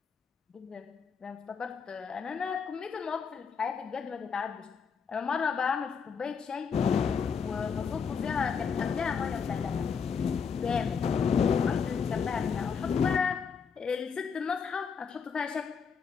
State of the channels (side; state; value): right; quieter; 6.2 dB